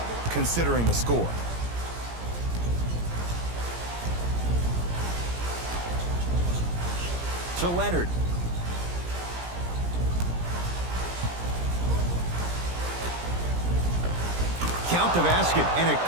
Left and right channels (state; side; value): late; left; 17 ms